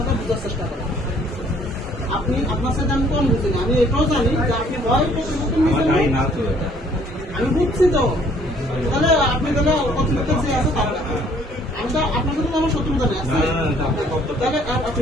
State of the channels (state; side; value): normal; both; correlation 0.60